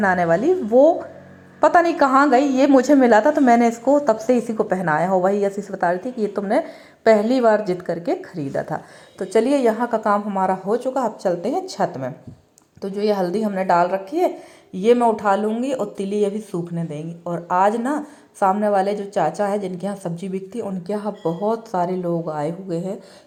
वाली, वो पता नहीं कहाँ गई, ये मुझे मिला था, तो मैंने इसको तब से इसी को पहनाया हो। वही यशी से बता रही थी कि ये तुमने पहली बार जिद करके खरीदा था। तो चलिए, यहाँ का काम हमारा हो चुका, अब चलते हैं छत में। तो जो ये हल्दी हमने डाल रखी है ये मैं उठा लूँगी, और तिली अभी सूखने देंगी। और आज ना सामने वाले जो चाचा है जिनके यहाँ सब्जी बिकती है, उनके यहाँ बहुत सारे लोग आए हुए हैं,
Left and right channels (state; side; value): identical; both; correlation 1.00